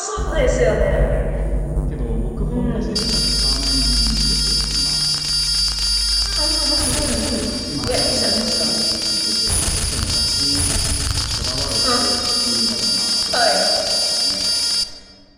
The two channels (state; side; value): identical; both; correlation 1.00